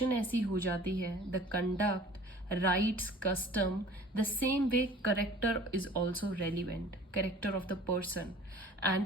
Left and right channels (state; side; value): normal; both; correlation 0.46